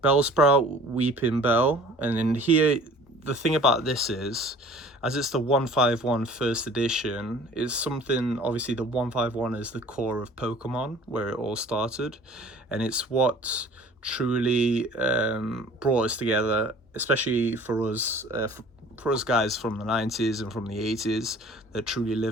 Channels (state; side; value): normal; both; correlation 0.48